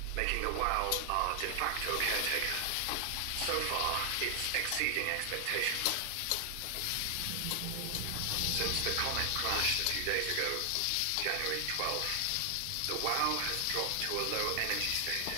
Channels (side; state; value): both; different; correlation 0.00